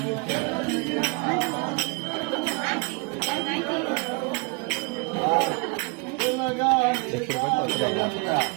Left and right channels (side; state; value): left; quieter; 30.1 dB